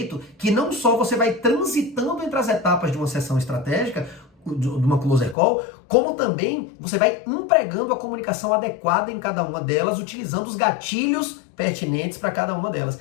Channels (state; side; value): drops out; right; at 5.4 s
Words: que não só você vai transitando entre as etapas de uma sessão estratégica, de uma closer call, como também você vai empregando a comunicação adequada em cada uma delas, utilizando os gatilhos pertinentes para cada uma delas.